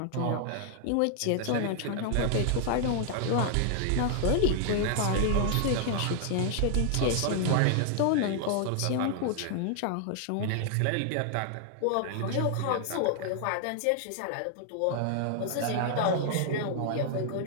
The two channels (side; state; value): both; different; correlation 0.00